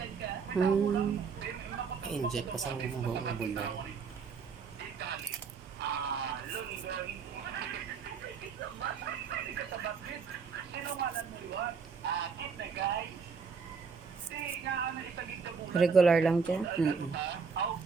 Hmm. I-inject ko sa buong bulong. Regular lang dyan.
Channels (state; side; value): quieter; left; 5.6 dB